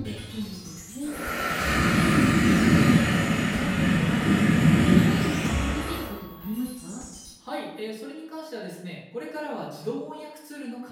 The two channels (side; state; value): both; identical; correlation 1.00